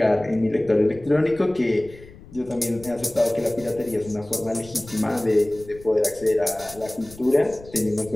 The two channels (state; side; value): noise; left; rumble, 20 dB below the sound